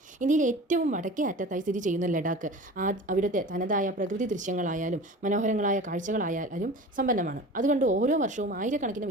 ഇന്ത്യയിലെ ഏറ്റവും വടക്കേ അറ്റത്തായി സ്ഥിതി ചെയ്യുന്ന ലഡാക്ക് അവിടുത്തെ തനതായ പ്രകൃതി ദൃശ്യങ്ങളായാലും മനോഹരങ്ങളായ കാഴ്ചകളായാലും സമ്പന്നമാണ്. അതുകൊണ്ട് ഓരോ വർഷവും ആയിരക്കണക്കിന്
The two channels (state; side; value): normal; both; correlation 0.37